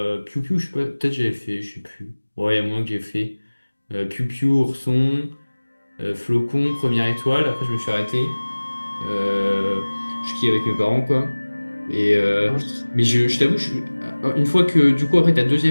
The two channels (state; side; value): inverted; both; correlation -1.00